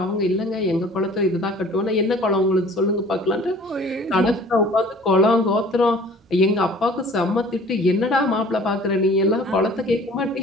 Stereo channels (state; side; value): normal; both; correlation 0.49